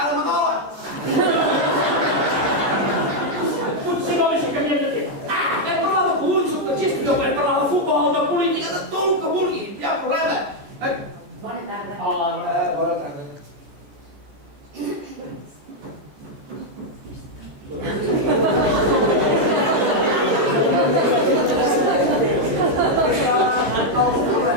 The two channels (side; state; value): left; late; 14 ms